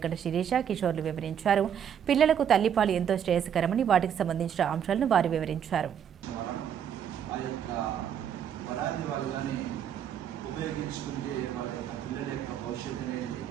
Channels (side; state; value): left; quieter; 8.9 dB